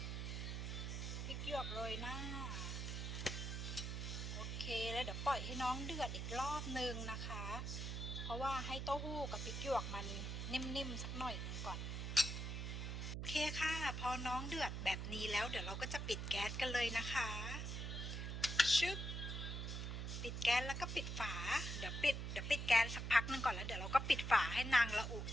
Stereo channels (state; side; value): noise; right; hum, 3 dB below the sound